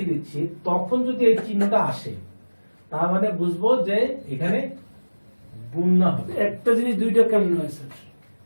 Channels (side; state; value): both; inverted; correlation -1.00